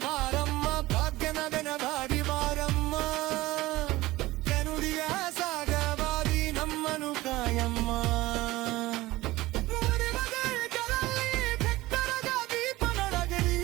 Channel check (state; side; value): quieter; left; 18.5 dB